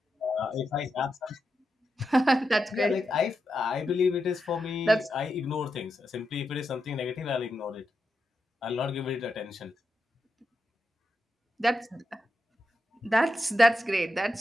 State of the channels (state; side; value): normal; both; correlation 0.87